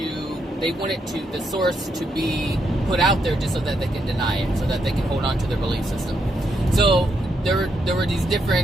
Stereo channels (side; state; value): both; normal; correlation 0.79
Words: source to be put out there just so that they can deny it, so that they can hold on to their belief system. So there were these